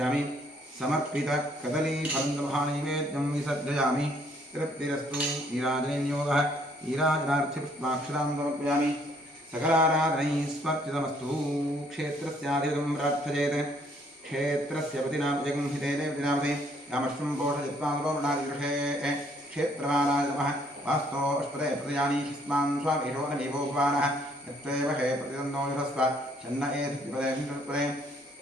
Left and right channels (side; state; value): both; normal; correlation 0.65